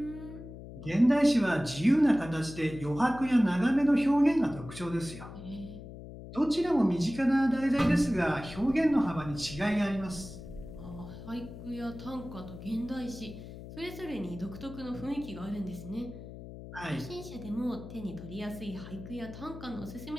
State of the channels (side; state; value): left; noise; hum, 13 dB below the sound